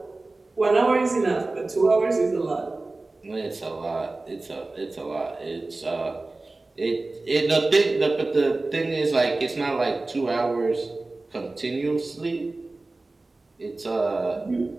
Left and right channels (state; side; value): quieter; left; 3.2 dB